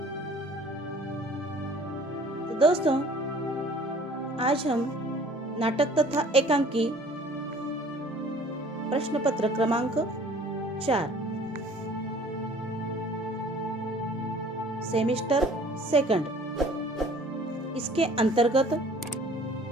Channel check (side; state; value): both; normal; correlation 0.51